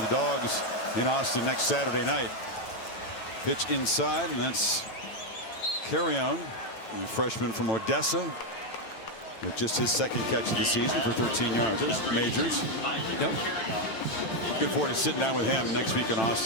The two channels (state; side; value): late; right; 9.0 ms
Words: the Dogs in Austin next Saturday night. Pitch inside, and that's Carrion, the freshman from Odessa, with just his second catch of the season for 13 yards. There's Majors. Yep. Looking forward to sitting down with him next week in